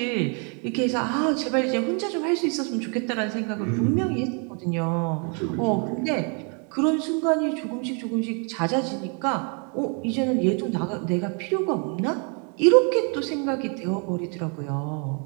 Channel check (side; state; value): left; quieter; 37.8 dB